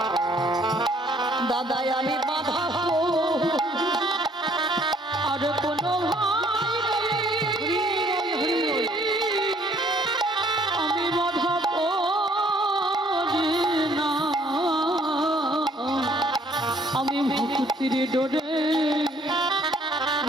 দাদা আমি বাঁধাবো। আর কোনো আমি বাধা পড়ি না, আমি ভক্তির ডোরে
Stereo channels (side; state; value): both; normal; correlation 0.62